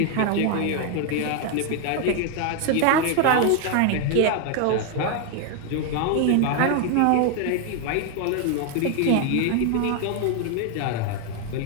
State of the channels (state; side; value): different; both; correlation 0.01